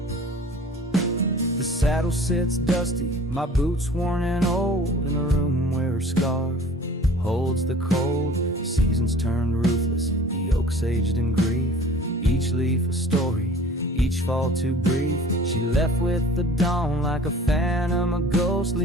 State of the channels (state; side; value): normal; both; correlation 0.46